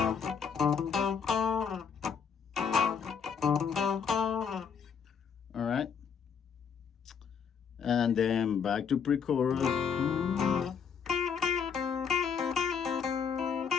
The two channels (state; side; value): quieter; right; 6.7 dB